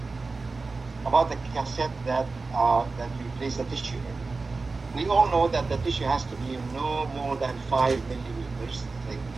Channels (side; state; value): left; quieter; 3.9 dB